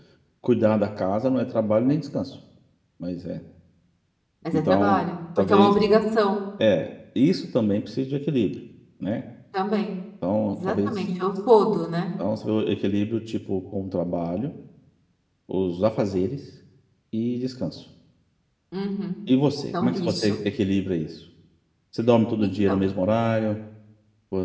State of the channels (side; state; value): both; identical; correlation 1.00